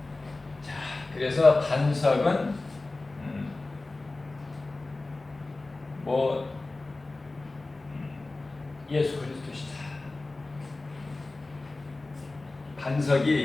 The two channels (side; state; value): right; quieter; 3.2 dB